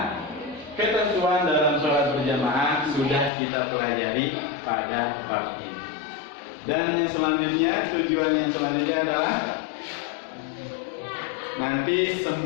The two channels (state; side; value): drops out; right; at 3.3 s